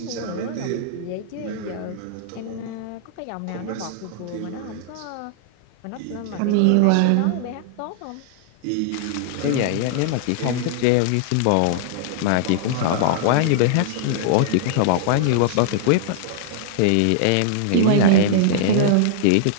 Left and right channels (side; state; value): both; different; correlation -0.01